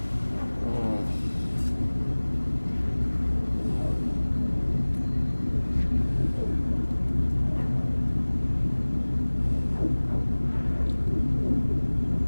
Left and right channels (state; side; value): inverted; both; correlation -1.00